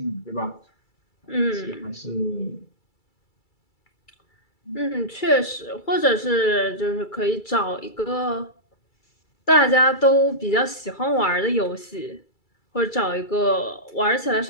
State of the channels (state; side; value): late; right; 2.3 ms